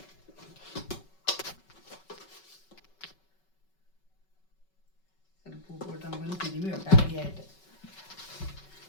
ചിലപ്പോൾ ഉപ്പിട്ട് നമുക്കൊന്ന് തിരുമ്മി വെക്കാം ആദ്യമായിട്ട്.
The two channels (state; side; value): late; right; 5.3 ms